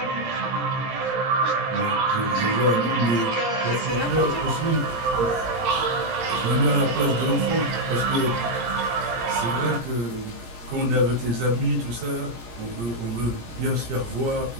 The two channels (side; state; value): left; late; 17 ms